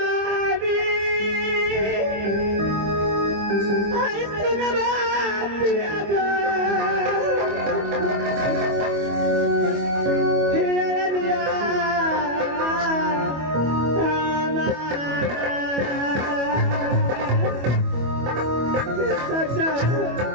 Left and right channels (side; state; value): left; late; 25 ms